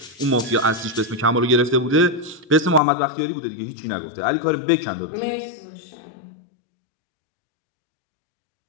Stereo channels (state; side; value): drops out; right; at 2.8 s